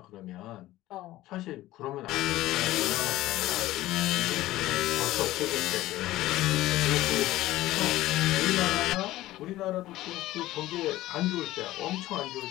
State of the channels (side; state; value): right; quieter; 16.2 dB